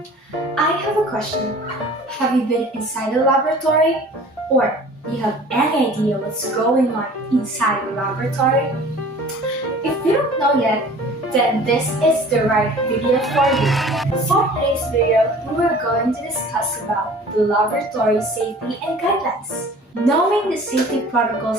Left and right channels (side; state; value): both; normal; correlation 0.46